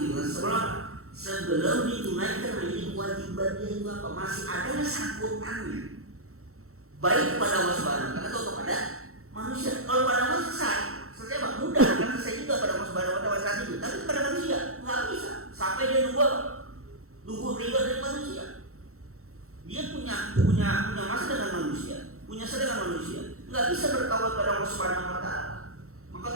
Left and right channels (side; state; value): left; late; 0.63 ms